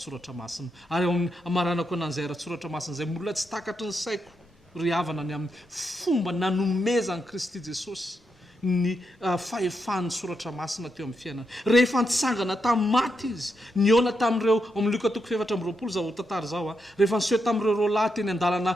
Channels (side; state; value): both; normal; correlation 0.83